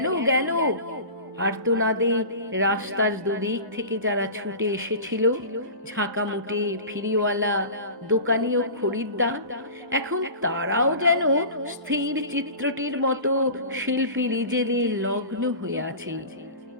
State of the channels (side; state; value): left; late; 1.1 ms